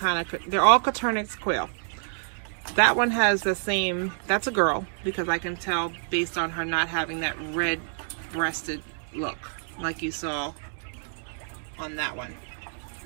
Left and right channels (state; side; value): silent; left; 60 dB below the other